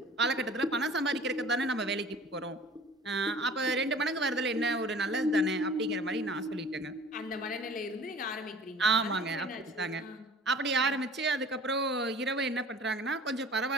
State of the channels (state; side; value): normal; both; correlation 0.46